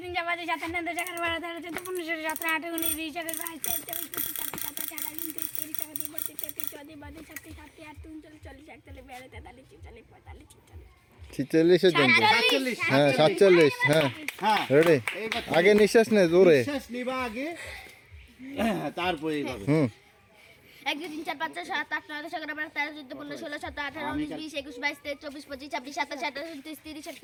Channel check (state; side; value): identical; both; correlation 1.00